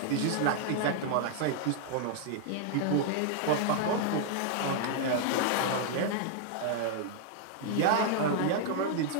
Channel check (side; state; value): both; different; correlation -0.01